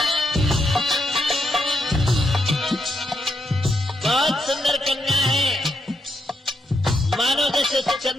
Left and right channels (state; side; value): normal; both; correlation 0.80